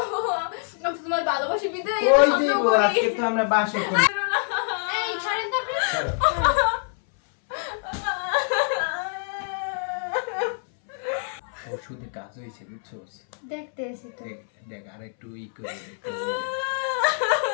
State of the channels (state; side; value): silent; right; 61 dB below the other